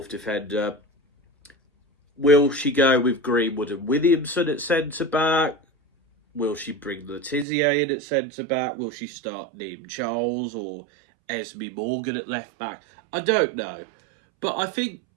defender. Will she go with Greenwood and Williamson at centre back? Will she bring Letizia in at centre back? Will she start Neem Charles or Esme Morgan at left back? I don't know. But I think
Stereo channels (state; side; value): drops out; left; at 7.5 s